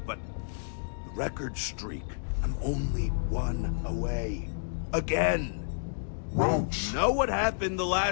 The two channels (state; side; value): silent; right; digital silence